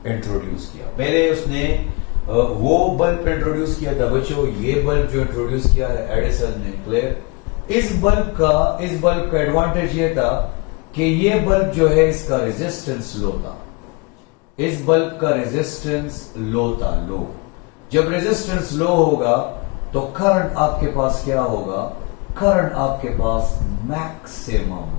इंट्रोड्यूस किया। पहले उसने वो बल्ब इंट्रोड्यूस किया था बच्चों, ये बल्ब जो इंट्रोड्यूस किया है एडिसन ने। क्लियर? इस बल्ब का एडवांटेज ये था कि ये बल्ब जो है इसका रेजिस्टेंस लो था। इस बल्ब का रेजिस्टेंस लो था, लो। जब रेजिस्टेंस लो होगा तो करंट आपके पास क्या होगा? करंट आपके पास मैक्सिमम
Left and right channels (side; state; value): right; quieter; 28.9 dB